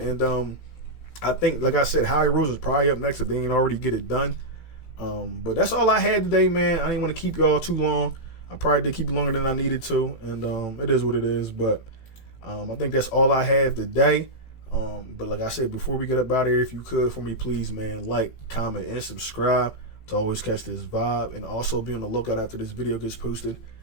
And I think, like I said, Howie Roseman is probably up next if they ain't already get it done. But that's all I had today, man. I didn't want to keep y'all too long. I probably did keep it longer than I needed to, and it is what it is. But I think that's all I have today. But like I said, before we get up out of here, if you could, for me, please, man, like, comment, and subscribe to always catch this vibe. And also be on the lookout after this video gets posted.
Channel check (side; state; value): right; late; 18 ms